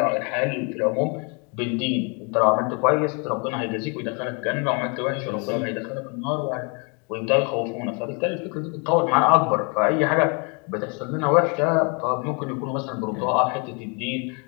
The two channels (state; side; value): quieter; right; 34.1 dB